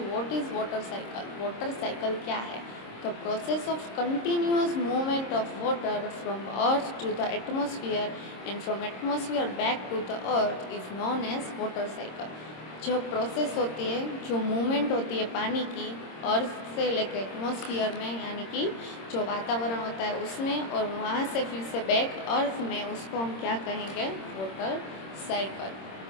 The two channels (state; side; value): late; right; 26 ms